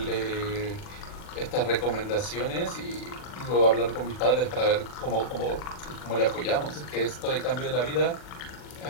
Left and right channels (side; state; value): right; late; 40 ms